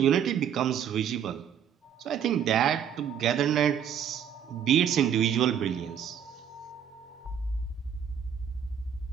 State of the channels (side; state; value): left; quieter; 8.6 dB